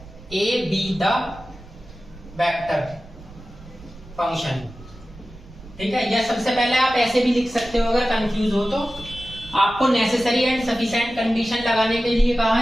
A be the vector function, ठीक है। या सबसे पहले आप ऐसे भी लिख सकते हो, अगर कंफ्यूज हो तो। आपको नेसेसरी एंड सफिशिएंट कंडीशन लगाने के लिए कहा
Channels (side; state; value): right; noise; rumble, 19 dB below the sound